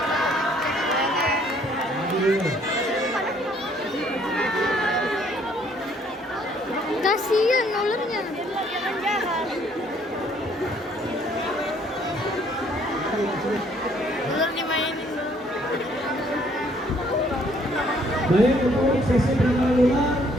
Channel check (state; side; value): normal; both; correlation 0.63